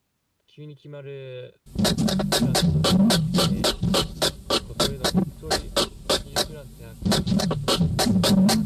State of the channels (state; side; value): identical; both; correlation 1.00